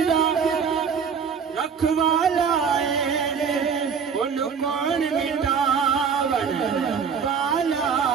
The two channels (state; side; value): quieter; left; 6.4 dB